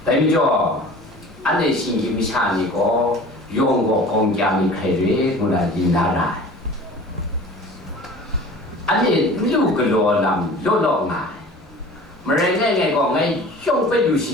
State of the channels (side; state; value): both; normal; correlation 0.42